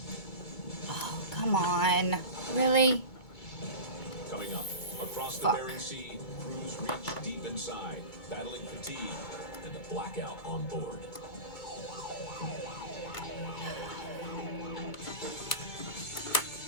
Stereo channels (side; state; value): right; late; 2.2 ms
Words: Oh, come on. Really? Coming up, across the Bering Sea, crews reach deep inside, battling fatigue and a blackout on board.